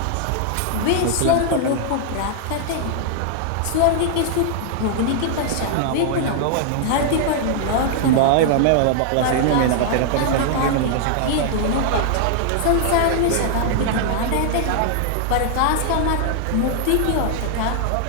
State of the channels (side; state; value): both; different; correlation -0.01